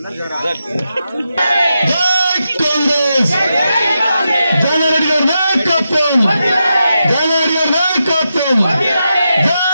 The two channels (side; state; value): both; inverted; correlation -0.87